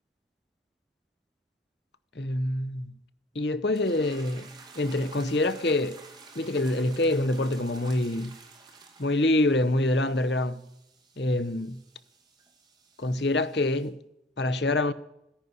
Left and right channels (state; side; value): normal; both; correlation 0.50